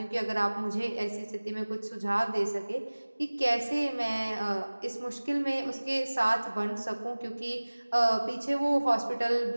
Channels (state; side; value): inverted; both; correlation -1.00